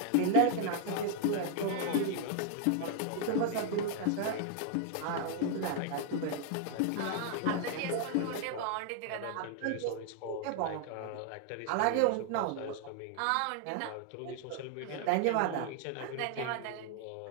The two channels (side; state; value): both; different; correlation 0.00